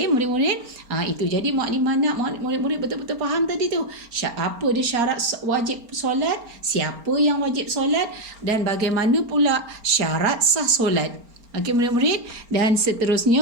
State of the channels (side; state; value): left; late; 4.3 ms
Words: murid-murid, itu. Jadi Mukadimah nak murid-murid betul-betul faham tadi tu. Apa dia syarat wajib solat, siapa yang wajib solat, dan bagaimana pula syarat sah solat. Okey murid-murid, dan